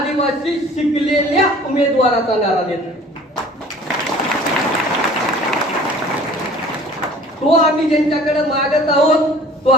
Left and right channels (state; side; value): normal; both; correlation 0.48